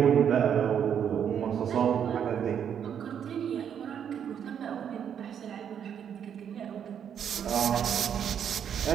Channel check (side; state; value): left; quieter; 8.5 dB